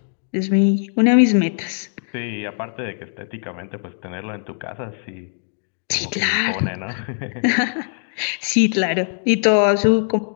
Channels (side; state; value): right; silent; digital silence